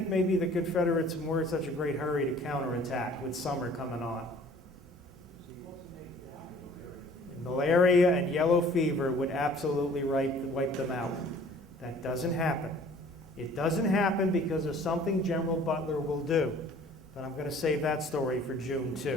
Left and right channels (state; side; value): normal; both; correlation 0.52